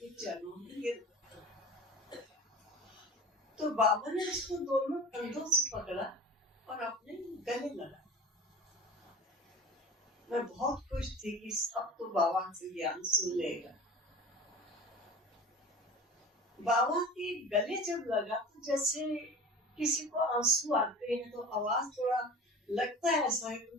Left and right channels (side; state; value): both; normal; correlation 0.37